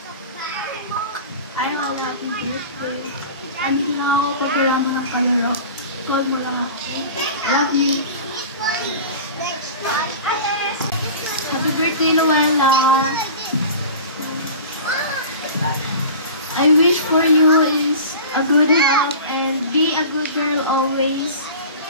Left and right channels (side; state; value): both; inverted; correlation -0.37